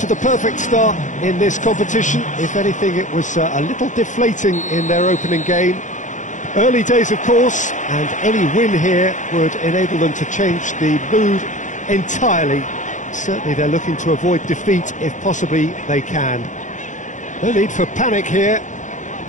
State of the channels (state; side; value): late; right; 0.36 ms